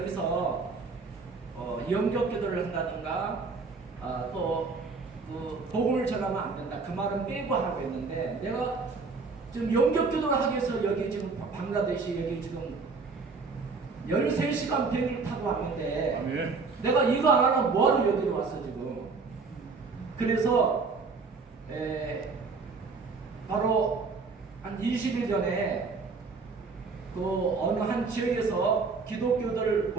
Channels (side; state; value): left; quieter; 4.4 dB